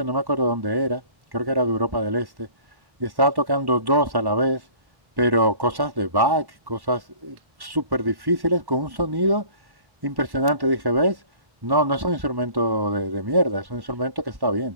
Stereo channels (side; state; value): left; late; 1.1 ms